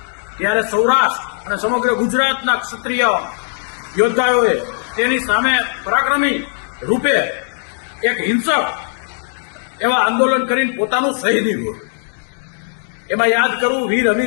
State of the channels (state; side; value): silent; right; digital silence